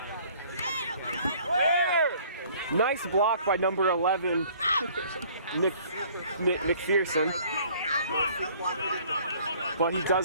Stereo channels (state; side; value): inverted; both; correlation -0.55